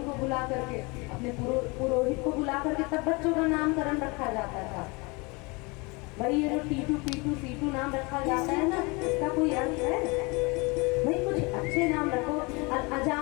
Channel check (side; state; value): right; quieter; 27.7 dB